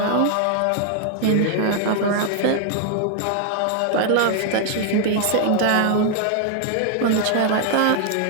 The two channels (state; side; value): different; both; correlation 0.00